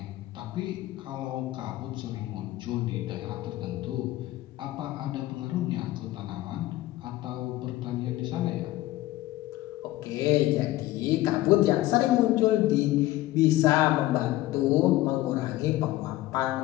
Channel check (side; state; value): right; quieter; 16.5 dB